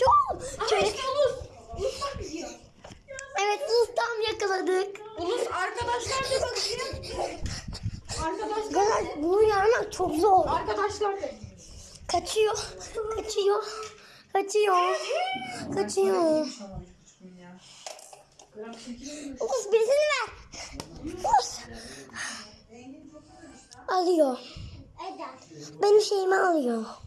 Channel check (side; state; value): both; identical; correlation 1.00